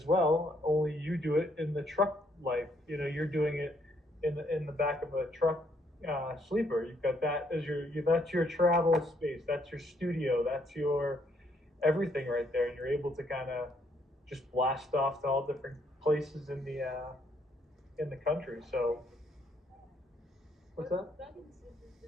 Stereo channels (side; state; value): both; normal; correlation 0.71